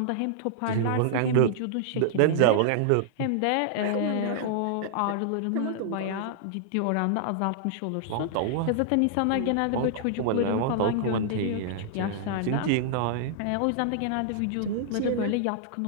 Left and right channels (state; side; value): different; both; correlation -0.01